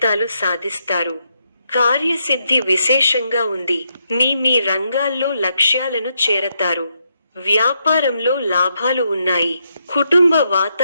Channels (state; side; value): inverted; both; correlation -0.80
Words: సాధిస్తారు. కార్యసిద్ధి విశేషంగా ఉంది. మీ రంగాల్లో లక్ష్యాలను చేరతారు. వ్యాపారంలో లాభాలు ఉన్నాయి. కుటుంబ